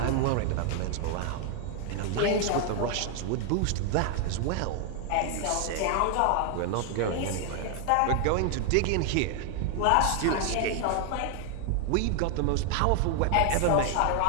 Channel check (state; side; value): different; both; correlation 0.00